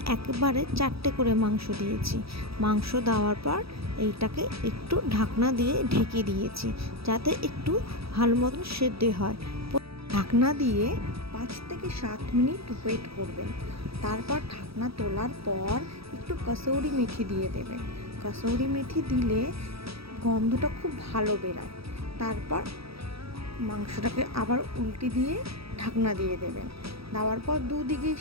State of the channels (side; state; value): left; late; 0.77 ms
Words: একবারে 4টে করে মাংস দিয়েছি। মাংস দেওয়ার পর এইটাকে একটু ঢাকনা দিয়ে ঢেকে দিয়েছি, যাতে একটু ভালো মতন সেদ্ধ হয়। ঢাকনা দিয়ে 5 থেকে 7 মিনিট ওয়েট করবেন। তারপর ঢাকনা তোলার পর একটু কসৌরি মেথি দিয়ে দেবেন। কসৌরি মেথি দিলে গন্ধটা খুব ভালো বেরায়। তারপর মাংসটাকে আবার উল্টে দিয়ে ঢাকনা দিয়ে দেবেন। দেওয়ার পর দুদিকেই